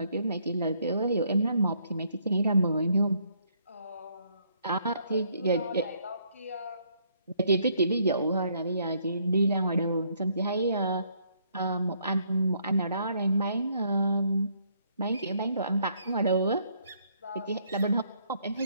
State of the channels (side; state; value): both; inverted; correlation -0.69